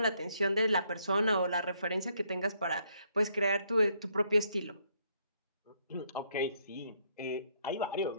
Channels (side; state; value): both; inverted; correlation -0.71